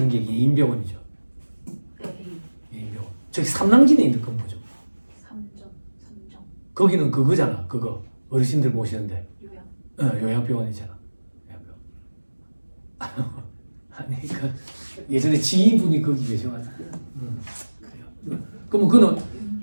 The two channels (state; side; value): inverted; both; correlation -1.00